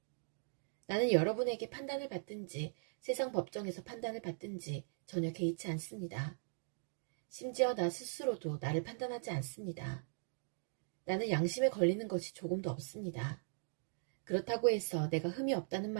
나는 여러분에게 판단을 받든지 세상 법정에서 판단을 받든지 전혀 개의치 않습니다. 심지어 나 스스로도 나를 판단하지 않습니다. 나는 양심에 걸리는 것이 조금도 없습니다. 그렇다고 해서 내가 흠이 없다는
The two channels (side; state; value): left; silent; digital silence